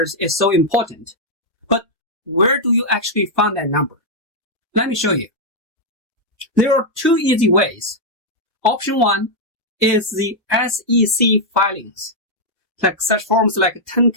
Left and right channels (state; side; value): normal; both; correlation -0.03